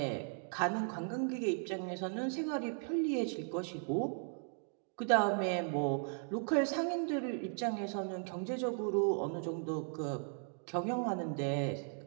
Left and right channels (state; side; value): silent; left; 53 dB below the other